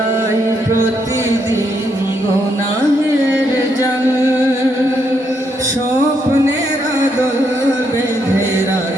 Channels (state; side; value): normal; both; correlation 0.76